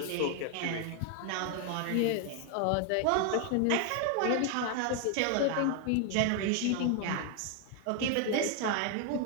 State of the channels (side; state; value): both; different; correlation 0.01